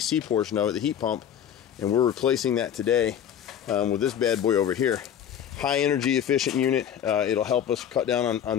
portion of it, the heat pump, and we're replacing that today with this bad boy over here. High energy efficient unit. It'll help us cut down on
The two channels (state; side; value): quieter; right; 9.3 dB